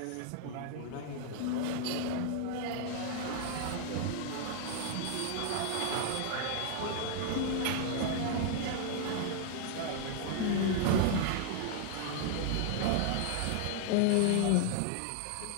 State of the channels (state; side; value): different; both; correlation 0.00